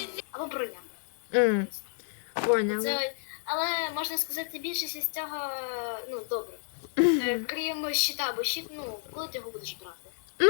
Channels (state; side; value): silent; right; digital silence